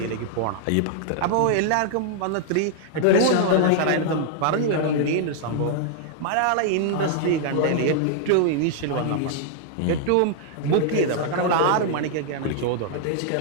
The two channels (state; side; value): different; both; correlation -0.01